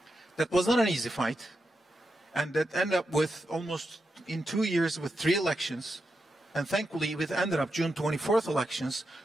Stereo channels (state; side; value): normal; both; correlation 0.87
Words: That was not an easy fight, and that ended up with almost in 2 years with 3 elections, and thankfully it ended up June 24th elections,